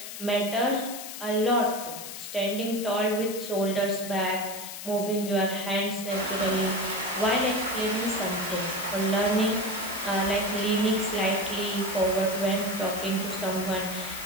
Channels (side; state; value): left; noise; hiss, 9 dB below the sound